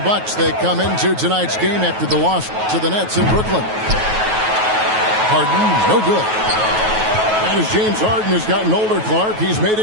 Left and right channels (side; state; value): left; late; 9.3 ms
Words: they come into tonight's game after the loss to the Nets in Brooklyn. Harden, no good. And as James Harden has gotten older, Clark, he's made